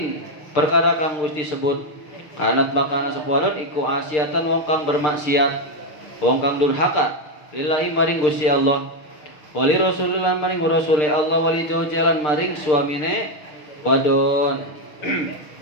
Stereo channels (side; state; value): right; late; 6.7 ms